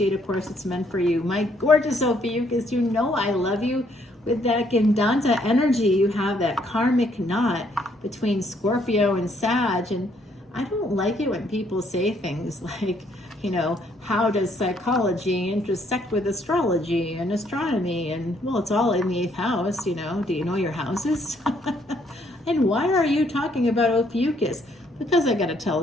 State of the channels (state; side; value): normal; both; correlation 0.68